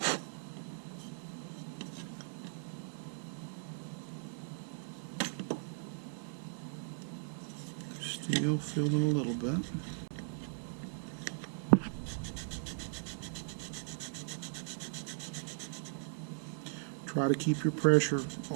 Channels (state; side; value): silent; left; digital silence